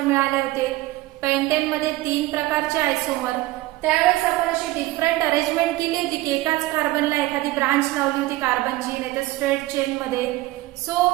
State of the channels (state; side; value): quieter; left; 18.3 dB